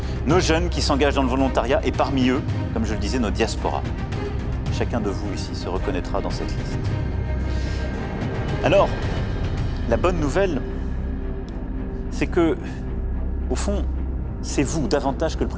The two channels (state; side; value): identical; both; correlation 1.00